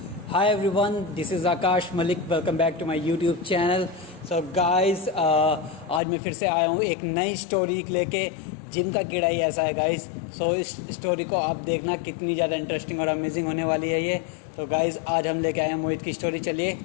Hi everyone, this is Akash Malik. Welcome back to my YouTube channel. So guys, आज मैं फिर से आया हूँ एक नई स्टोरी लेके। जिम का कीड़ा ही ऐसा है गाइस। सो इस स्टोरी को आप देखना कितनी ज़्यादा इंटरेस्टिंग और अमेजिंग होने वाली है ये। तो गाइस आज हम लेके आए हैं मोहित की स्टोरी। चलिए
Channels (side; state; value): right; drops out; at 6.0 s